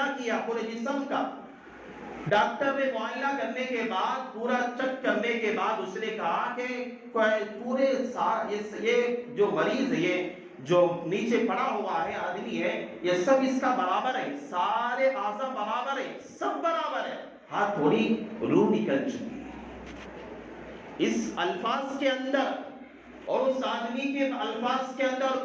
کیا پورے جسم کا، ڈاکٹر نے معائنہ کرنے کے بعد پورا چیک کرنے کے بعد اس نے کہا کہ پورے یہ جو مریض ہے، یہ جو نیچے پڑا ہوا ہے آدمی ہے، یہ سب اس کا برابر ہے، سارے اعضاء برابر ہے، سب برابر ہے، ہاں تھوڑی روح نکل چکی ہے۔ اس الفاظ کے اندر اور اس آدمی کے الفاظ کے اندر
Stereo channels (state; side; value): identical; both; correlation 1.00